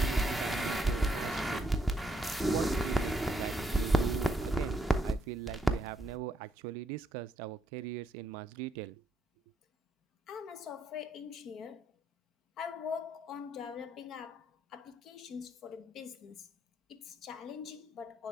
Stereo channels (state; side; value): normal; both; correlation 0.75